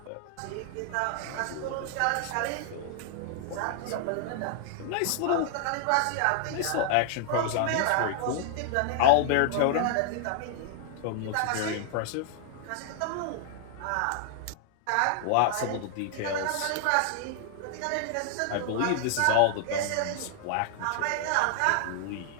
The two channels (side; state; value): both; different; correlation 0.00